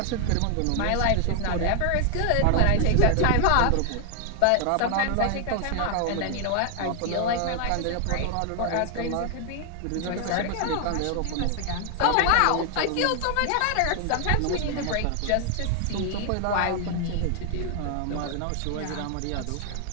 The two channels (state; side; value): different; both; correlation 0.00